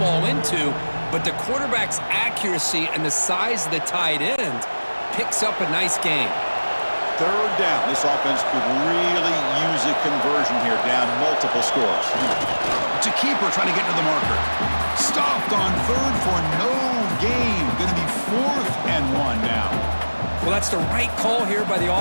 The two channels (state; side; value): inverted; both; correlation -1.00